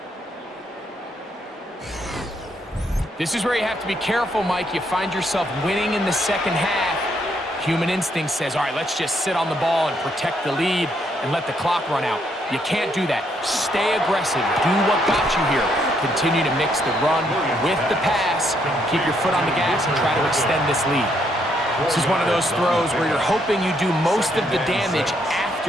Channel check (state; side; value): normal; both; correlation 0.73